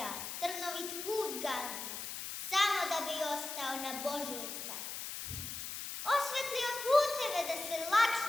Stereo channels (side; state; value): left; noise; hiss, 6 dB below the sound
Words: trnovit put gazi, samo da bi ostao na Božjoj stazi. Osvetlio puteve da se